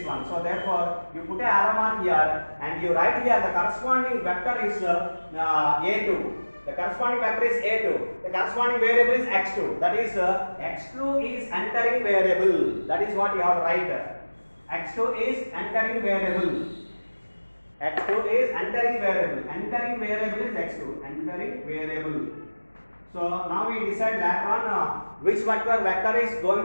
one. So therefore, you put a arrow mark here and you write here the corresponding vector is A2. The corresponding vector is A2. The corresponding variable is X2. That is X2 is entering variable. That is what you have to write. X2 is entering variable. X2 is entering variable. Entering variable is X2. Entering variable. So now we decide later on which vector is going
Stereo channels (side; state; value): both; inverted; correlation -1.00